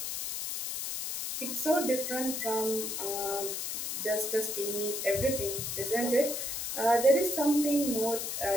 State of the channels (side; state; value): left; noise; hiss, 3 dB below the sound